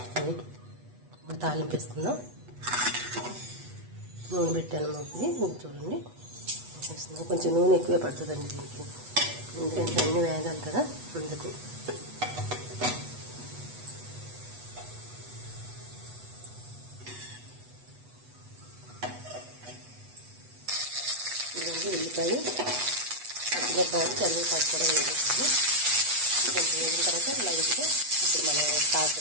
తాలింపు వేసుకుందాం. నూనె పెట్టాను మూకి, చూడండి. కొంచెం నూనె ఎక్కువే పడుతుందండి దీనికి, ఎందుకంటే అన్ని వేగాలి కదా, అందుకు. ఇదండి ఉల్లిపాయ, పచ్చిమిరపకాయలు, కరివేపాకు కూడా వేసేస్తాము. కొంచెం వేగిన తర్వాత లైట్గా ఇప్పుడు మనం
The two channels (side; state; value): left; late; 8.2 ms